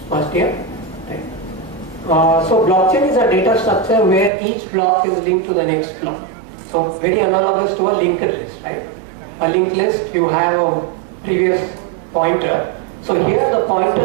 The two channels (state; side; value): drops out; left; at 4.3 s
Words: year, right? So blockchain is a data structure where each block is linked to the next block. So very analogous to a linked list, right? A linked list, you have a previous pointer. So here the